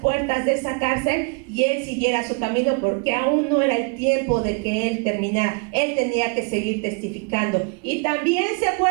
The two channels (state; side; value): quieter; left; 35.3 dB